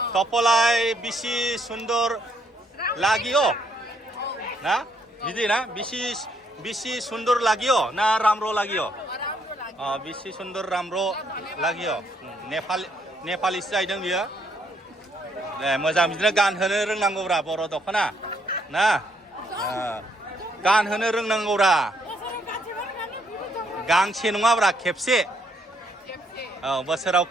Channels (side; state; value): both; normal; correlation 0.72